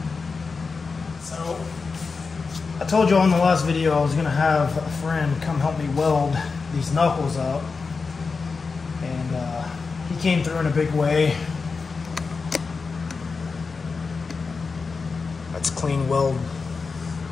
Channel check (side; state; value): right; quieter; 4.6 dB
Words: So, I told you on the last video I was going to have a friend come help me weld these knuckles up, and he came through in a big way. That's clean weld